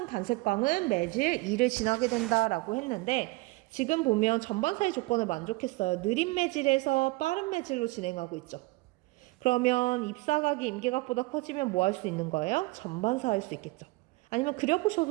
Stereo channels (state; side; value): quieter; left; 23.1 dB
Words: 단색광은 매질 2를 지나게 된다라고 했는데 지금 보면 전반사의 조건을 만족했어요. 느린 매질에서 빠른 매질로 진행하고 있죠. 그러면 입사각이 임계각보다 커지면 뭐 할 수 있는 거예요? 전반사 할 수 있겠죠. 아니면